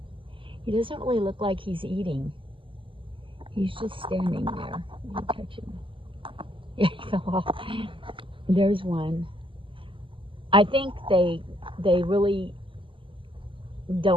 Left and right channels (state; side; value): late; left; 0.25 ms